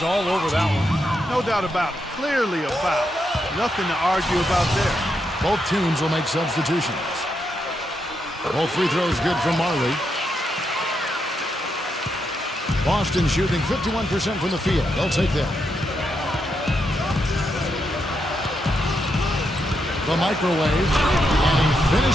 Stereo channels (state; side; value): normal; both; correlation 0.82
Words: all over that one. No doubt about it. Clearly a foul. Nothing to argue about there. Both teams will make substitutions. Both free throws good from Marley. Boston shooting 51% from the field. They'll take that. The microwave, and he